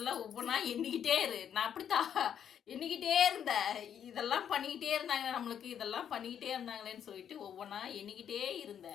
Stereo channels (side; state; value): right; quieter; 8.9 dB